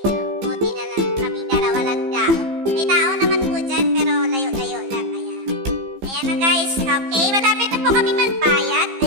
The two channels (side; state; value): left; late; 15 ms